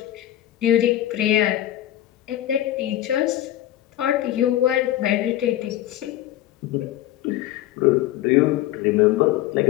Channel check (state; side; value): quieter; right; 13.7 dB